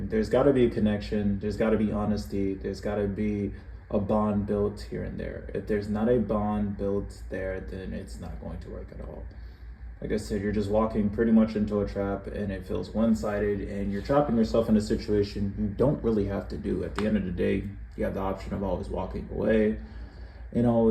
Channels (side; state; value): both; identical; correlation 1.00